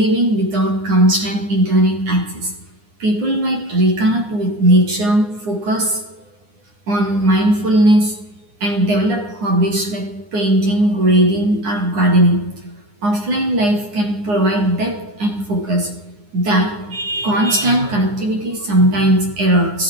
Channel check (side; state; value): left; late; 9.7 ms